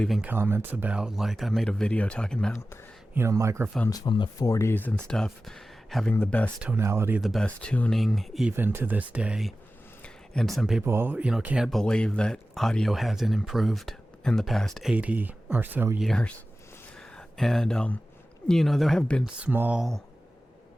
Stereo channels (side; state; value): both; normal; correlation 0.95